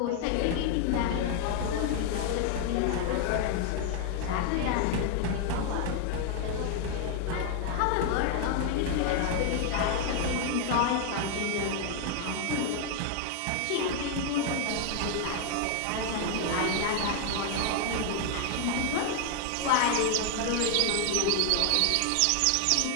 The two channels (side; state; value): both; different; correlation 0.00